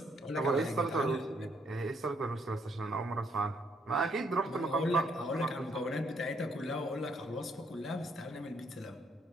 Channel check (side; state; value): both; normal; correlation 0.70